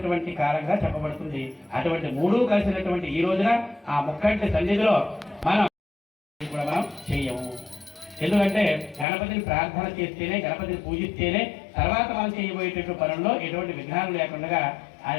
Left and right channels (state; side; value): drops out; right; at 9.1 s